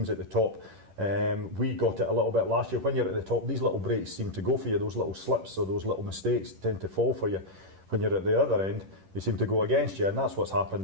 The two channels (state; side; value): late; left; 11 ms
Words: at the top. We got it a little bit last year. When you're at the top, these little breaks seem to go for you. Those little slips or those little mistakes tend to fall for you. When you're at the other end, they seem to go against you, and that's what's happened